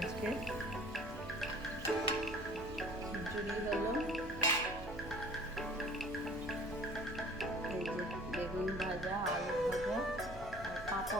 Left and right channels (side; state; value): both; normal; correlation 0.49